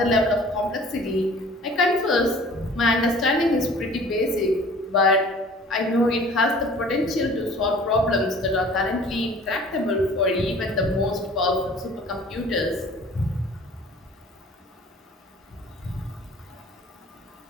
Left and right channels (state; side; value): normal; both; correlation 0.48